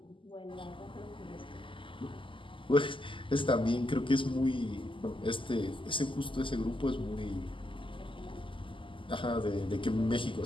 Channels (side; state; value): right; late; 0.25 ms